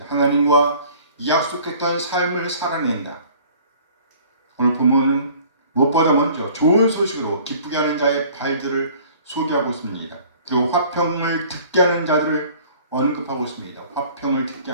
하나님과 약속했던 삶을 살아낸다. 오늘 본문은 무엇보다 먼저 좋은 소식으로 기쁘게 하는 자의 발들을 소개하고 있습니다. 그리고 화평을 듣게 하는 자들을 언급하고 있습니다. 화평을 듣게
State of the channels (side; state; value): both; inverted; correlation -0.51